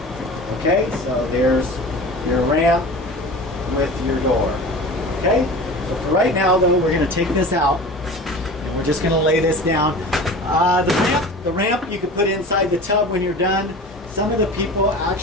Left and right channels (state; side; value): normal; both; correlation 0.37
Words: Okay, so there's your ramp with your door. Okay, so for right now, though, we're going to take this out, and we're just going to lay this down. The ramp you can put inside the tub when you're done. Some of the people